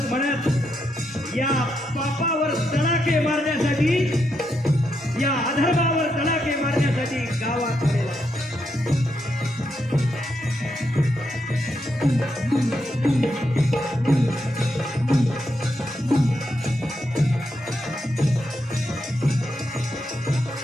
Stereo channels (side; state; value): both; normal; correlation 0.81